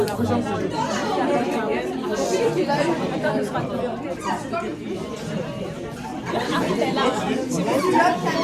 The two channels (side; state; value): both; identical; correlation 1.00